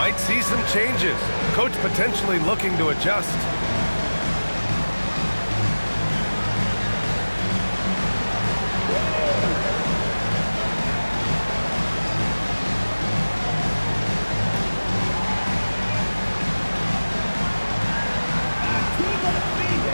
see some changes. Coach potentially looking to adjust.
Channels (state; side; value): inverted; both; correlation -1.00